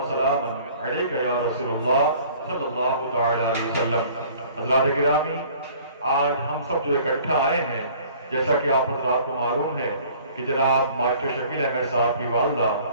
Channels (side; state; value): both; inverted; correlation -0.52